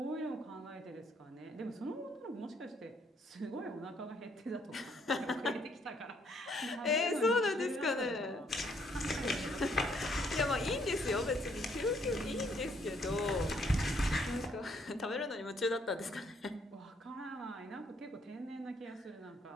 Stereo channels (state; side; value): normal; both; correlation 0.68